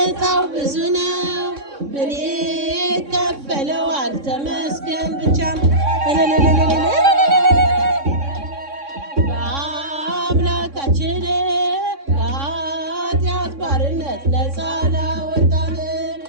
ብዙ ነው ምን ይከፈለዋል ተመስገን ብቻ በአምላካችን ከኃጢአት ባርነት ነፃ ላወጣን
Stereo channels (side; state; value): left; late; 3.6 ms